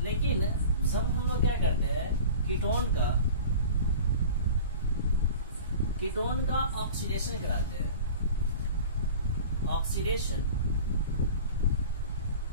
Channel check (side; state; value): both; inverted; correlation -0.39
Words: लेकिन जब हम लोग क्या करते हैं, कीटोन का ऑक्सीडेशन कराते हैं, oxidation